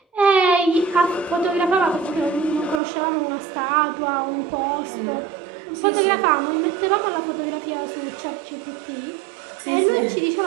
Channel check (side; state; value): left; drops out; at 2.8 s